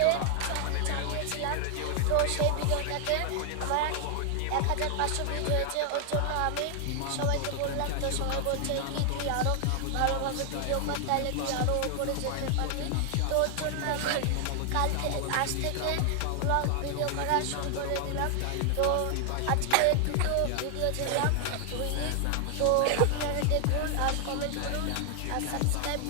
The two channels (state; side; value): different; both; correlation 0.00